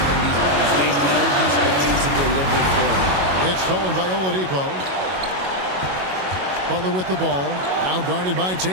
in these moments. They know he's going to deliver for them. It's stolen by Oladipo. Butler with the ball. Now guarded by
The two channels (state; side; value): late; left; 22 ms